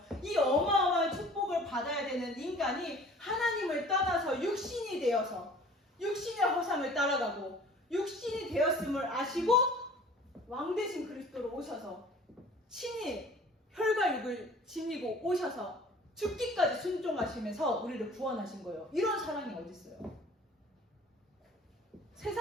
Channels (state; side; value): normal; both; correlation 0.48